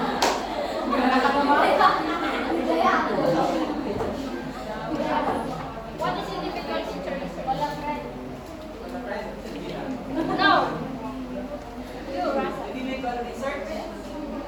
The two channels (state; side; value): identical; both; correlation 1.00